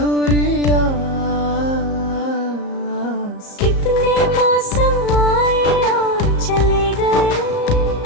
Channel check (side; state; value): right; late; 34 ms